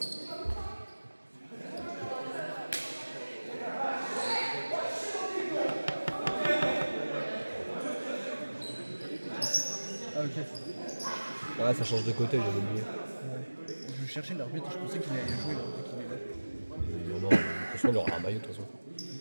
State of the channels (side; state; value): both; inverted; correlation -1.00